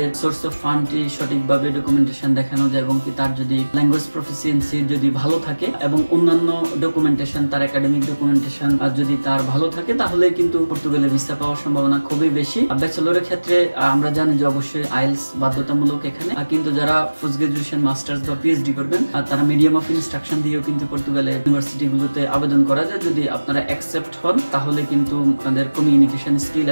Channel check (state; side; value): inverted; both; correlation -1.00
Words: সোর্স অফ ফান্ডটি সঠিকভাবে ডকুমেন্টেশন দেখানো যায় এবং কি তার যদি ল্যাঙ্গুয়েজ প্রফিসিয়েন্সি যদি ভালো থাকে এবং অন্যান্য ডকুমেন্টেশন তার একাডেমিক ডকুমেন্টেশন যদি তার ভালো থাকে, তাহলে কিন্তু পর্তুগালে ভিসা পাওয়ার সম্ভাবনা খুবই বেশি। ব্যাচেলরের ক্ষেত্রে আমরা জানি যে অবশ্যই আইএলটিএস বাধ্যতামূলক এখানে, কিন্তু যারা পোস্ট গ্রাজুয়েশন মাস্টার্স বা পিএইচডি করবেন তারা মিডিয়াম অফ ইনস্ট্রাকশন দিয়েও কিন্তু পর্তুগালের ইউনিভার্সিটি গুলোতে আবেদন করা যায়। যদি আপনারা অ্যাকসেপ্ট হন তাহলে কিন্তু আপনাদের কমিউনিকেশন স্কিল